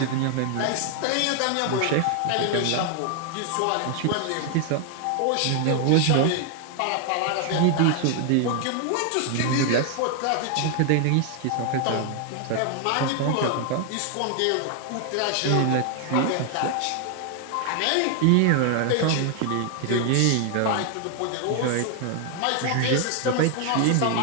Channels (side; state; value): both; different; correlation 0.00